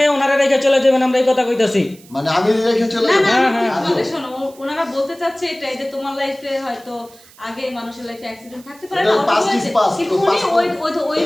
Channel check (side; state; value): right; noise; hiss, 25 dB below the sound